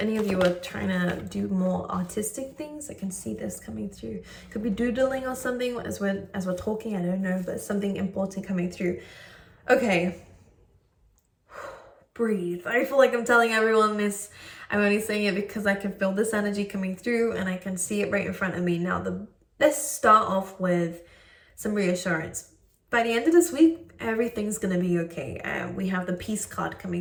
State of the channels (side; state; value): both; identical; correlation 1.00